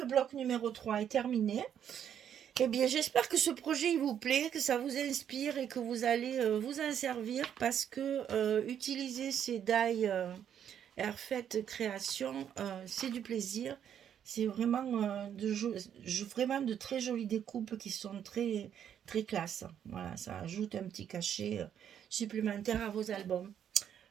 bloc numéro 3 est terminé. Eh bien, j'espère que ce projet il vous plaît, que ça vous inspire et que vous allez vous en servir parce que utiliser ces die Airfait Création, c'est du plaisir. C'est vraiment, vraiment de très jolies découpes qui sont très, très classe. Voilà, ça ajoute un petit cachet supplémentaire à vos albums.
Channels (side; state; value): left; quieter; 9.2 dB